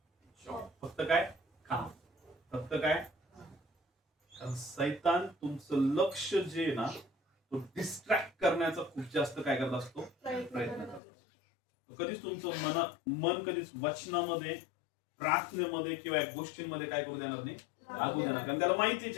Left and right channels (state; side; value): drops out; right; at 11.0 s